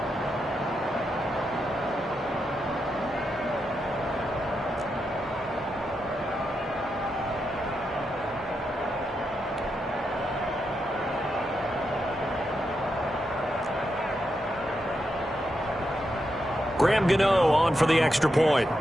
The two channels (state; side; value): normal; both; correlation 0.85